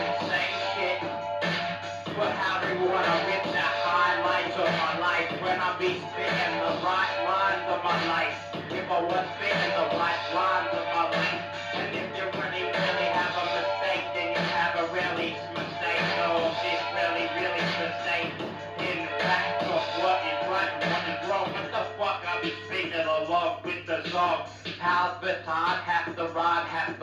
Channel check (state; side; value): identical; both; correlation 1.00